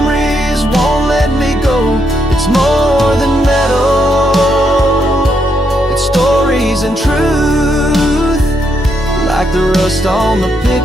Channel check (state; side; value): normal; both; correlation 0.78